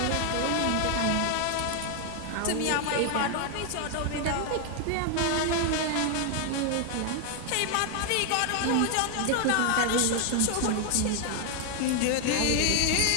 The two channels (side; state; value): both; different; correlation 0.00